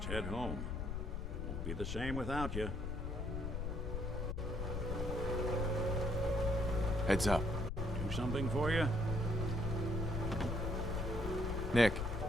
head home. Won't be the same without you. Heads up. Do something for you? Nick.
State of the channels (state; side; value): noise; left; rumble, 2 dB below the sound